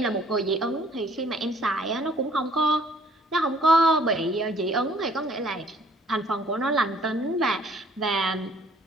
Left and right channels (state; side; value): normal; both; correlation 0.59